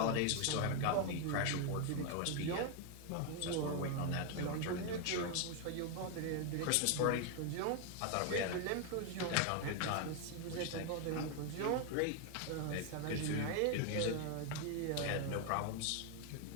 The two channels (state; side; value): different; both; correlation 0.01